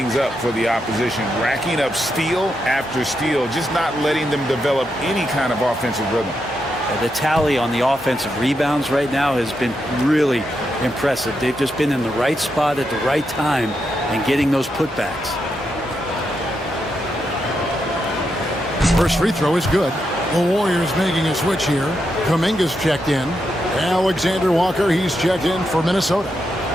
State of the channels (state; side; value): normal; both; correlation 0.83